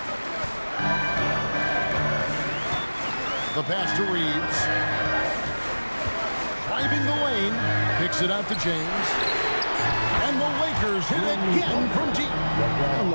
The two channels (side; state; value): both; inverted; correlation -1.00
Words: The pass to Reeves. Driving the lane. Picks it out to James. And the Lakers hit again from deep.